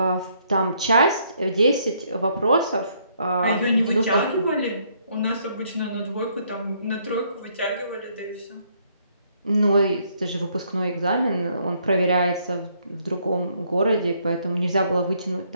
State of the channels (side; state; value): both; inverted; correlation -0.69